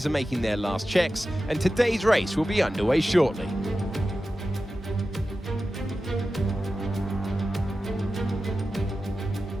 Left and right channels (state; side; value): normal; both; correlation 0.93